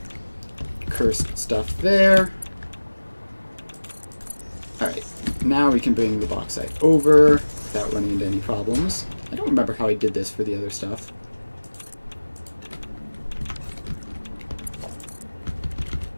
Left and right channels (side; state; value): both; inverted; correlation -1.00